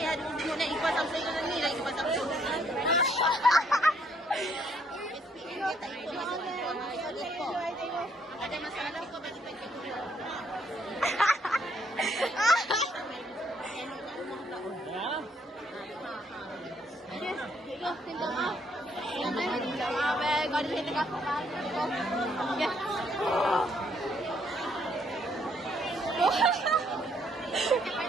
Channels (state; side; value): normal; both; correlation 0.69